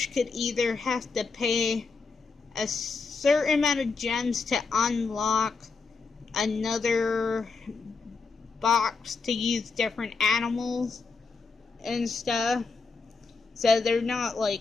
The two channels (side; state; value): right; quieter; 4.6 dB